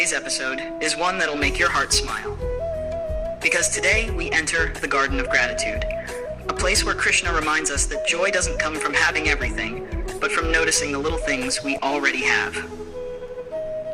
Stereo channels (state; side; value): identical; both; correlation 1.00